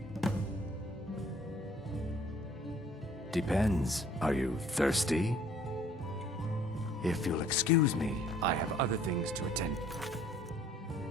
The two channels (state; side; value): normal; both; correlation 0.56